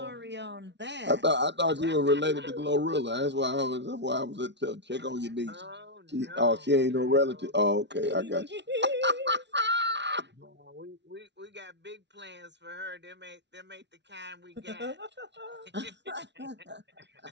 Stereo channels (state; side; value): late; left; 0.51 ms